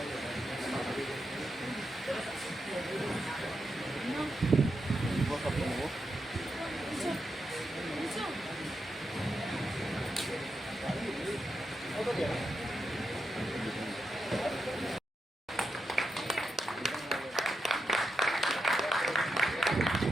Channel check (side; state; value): both; normal; correlation 0.85